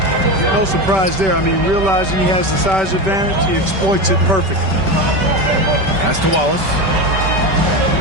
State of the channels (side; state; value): left; late; 5.2 ms